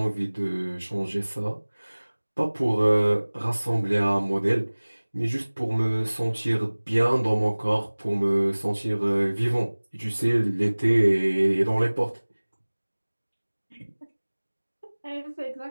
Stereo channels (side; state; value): both; inverted; correlation -1.00